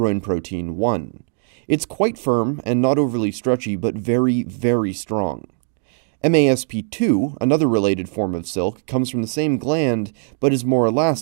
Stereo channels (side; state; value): left; silent; 64 dB below the other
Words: protein 1. It's quite firm and not overly stretchy, but very, very strong. MASP2, another related form of silk, comes from the same gland, but is more